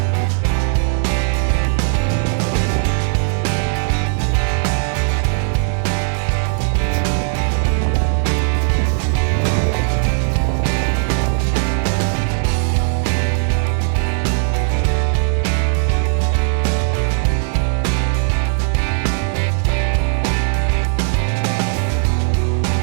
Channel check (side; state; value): left; silent; digital silence